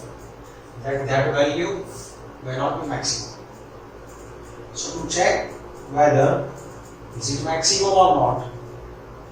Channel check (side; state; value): both; identical; correlation 1.00